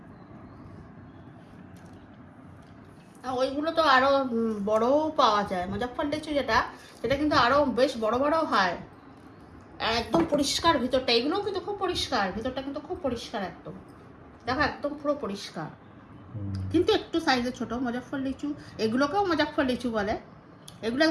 ওইগুলো তো আরো বড়ও পাওয়া যায়, মুজাফফর লিচু যেটা, সেটা কিন্তু আরো বেশ বড় বড় হয়, একদম পরিষ্কার ভিতরটা। এগুলোও কিন্তু খুব পরিষ্কার, ভিতরটা কিন্তু খুব পরিষ্কার একদম, দেখো একদম পুরো পরিষ্কার, কিন্তু একটু সাইজে ছোট। মুজাফফর লিচু, এগুলোকেও মুজাফফর লিচু বলে, এগুলো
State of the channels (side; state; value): both; identical; correlation 1.00